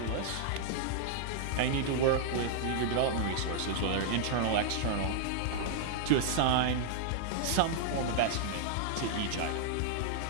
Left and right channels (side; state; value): both; different; correlation -0.01